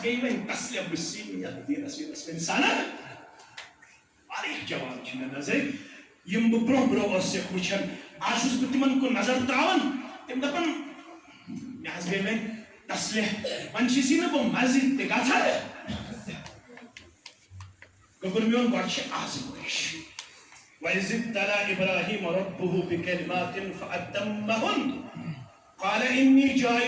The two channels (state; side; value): identical; both; correlation 1.00